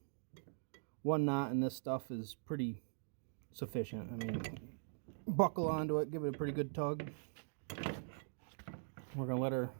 one knot in this stuff is pretty sufficient. I mean, buckle onto it, give it a pretty good tug. We're going to let our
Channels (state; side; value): silent; left; digital silence